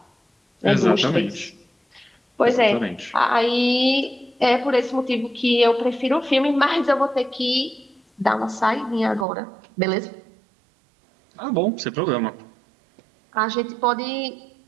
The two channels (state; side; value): drops out; left; at 9.2 s